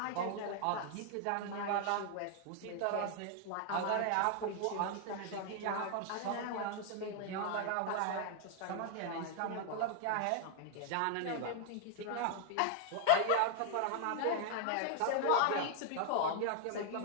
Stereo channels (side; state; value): both; different; correlation 0.00